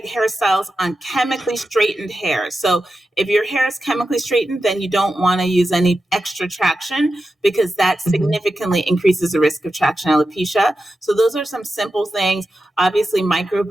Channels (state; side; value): normal; both; correlation 0.91